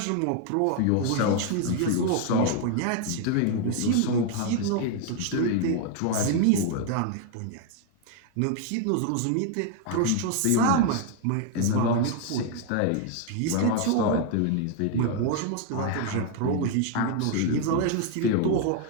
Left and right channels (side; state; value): both; different; correlation 0.00